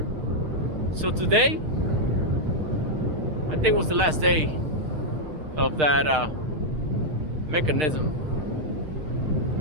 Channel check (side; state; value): left; late; 6.5 ms